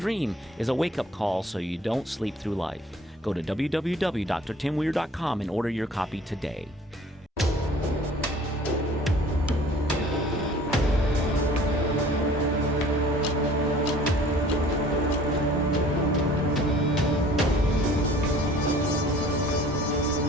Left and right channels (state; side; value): normal; both; correlation 0.51